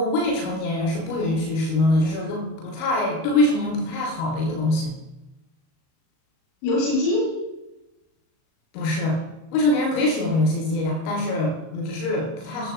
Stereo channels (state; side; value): late; right; 37 ms